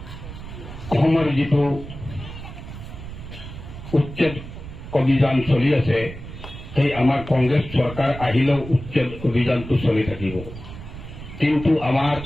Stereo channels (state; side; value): noise; right; rumble, 12 dB below the sound